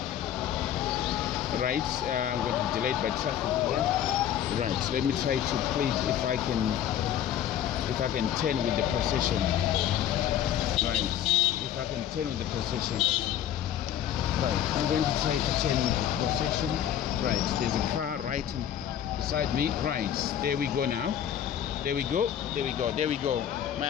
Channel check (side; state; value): right; quieter; 10.4 dB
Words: Right, I'm going to be delayed by traffic here. Right, let me try to please if I can turn with the procession. Right, if I can turn with the procession. Right, I'm going to try to turn with the procession. Right, there's a car right beside me. Right, there we go now. There we go. My